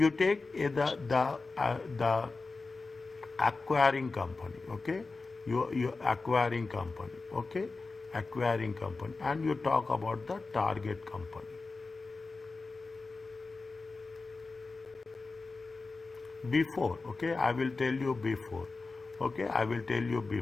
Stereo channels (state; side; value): quieter; right; 3.8 dB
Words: take the acquiring company, okay? You acquiring company, okay? Acquiring company, and you talk about the target company. Before, okay, I will tell you before, okay, I will tell you